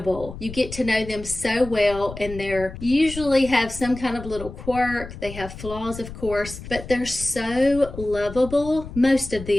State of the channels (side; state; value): left; noise; rumble, 12 dB below the sound